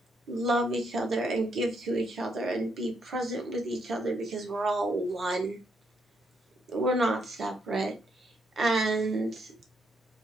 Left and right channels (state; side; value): normal; both; correlation 0.76